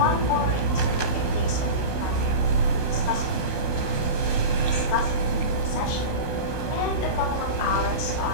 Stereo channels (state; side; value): late; right; 16 ms